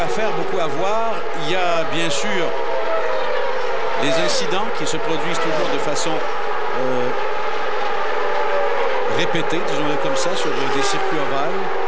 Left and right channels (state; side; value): identical; both; correlation 1.00